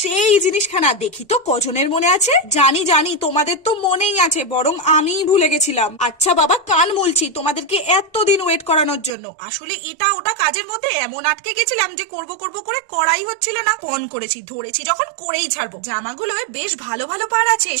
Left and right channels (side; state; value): left; drops out; at 9.1 s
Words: সেই জিনিসখানা, দেখি তো কজনের মনে আছে। জানি জানি তোমাদের তো মনেই আছে, বরং আমিই ভুলে গেছিলাম। আচ্ছা বাবা, কান মুলছি তোমাদেরকে এতদিন ওয়েট করানোর জন্য। আসলে এটা ওটা কাজের মধ্যে এমন আটকে গেছিলাম যে করব করে করাই হচ্ছিল না। ফোন করেছি, ধরেছি যখন করেই ছাড়বো। জামাগুলো বেশ ভালো ভালো পার আছে,